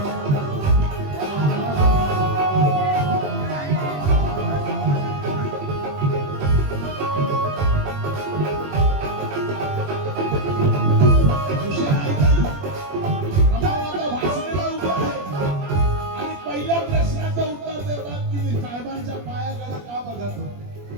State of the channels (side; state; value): left; late; 21 ms